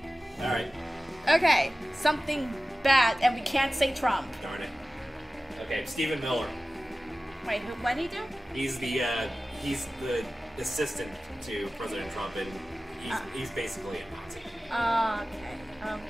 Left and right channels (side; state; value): both; normal; correlation 0.96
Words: Alright. Okay, something bad, and we can't say Trump. Darn it. Okay, Stephen Miller. Wait, what did he do? He's the assistant to President Trump, and he's basically a Nazi. Okay.